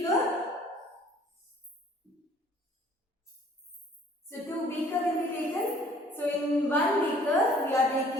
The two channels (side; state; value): both; normal; correlation 0.56